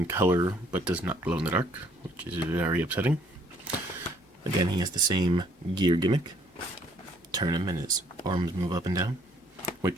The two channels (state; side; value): normal; both; correlation 0.63